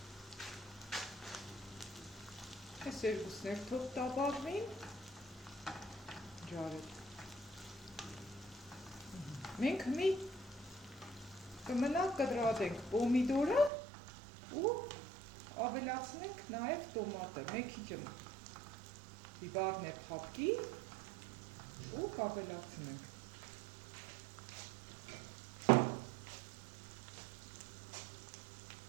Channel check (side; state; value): left; drops out; at 13.7 s